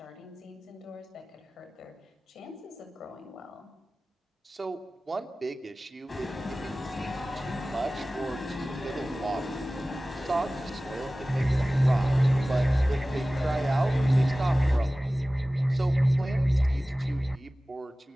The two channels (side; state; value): both; normal; correlation 0.97